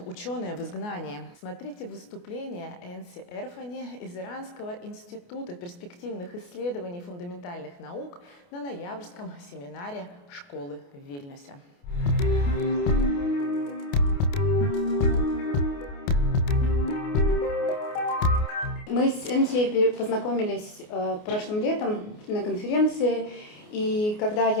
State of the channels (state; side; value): late; right; 28 ms